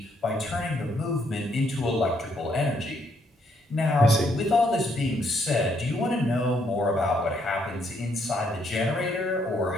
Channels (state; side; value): normal; both; correlation 0.72